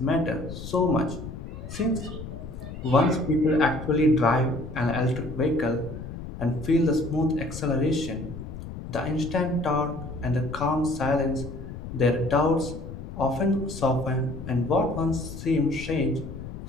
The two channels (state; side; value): noise; left; rumble, 10 dB below the sound